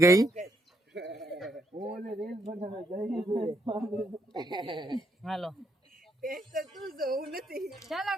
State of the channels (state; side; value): normal; both; correlation 0.75